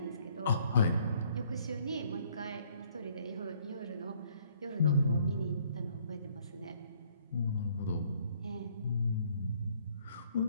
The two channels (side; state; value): both; inverted; correlation -0.63